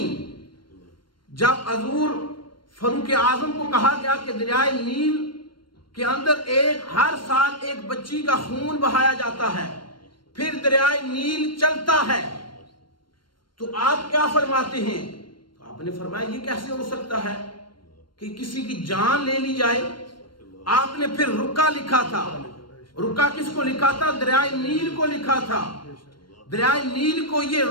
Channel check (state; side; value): late; right; 0.72 ms